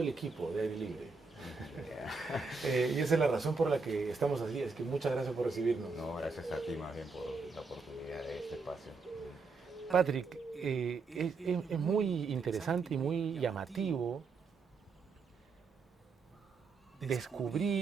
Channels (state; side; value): quieter; left; 4.4 dB